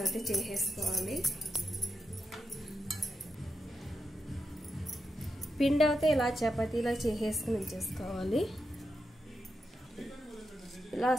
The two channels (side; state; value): both; normal; correlation 0.86